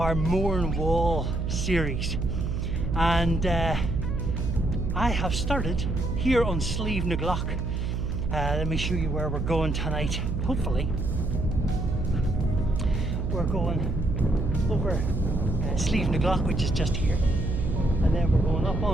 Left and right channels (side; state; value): right; noise; hum, 1 dB below the sound